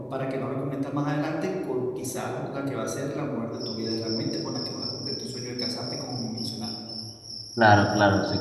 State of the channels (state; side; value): identical; both; correlation 1.00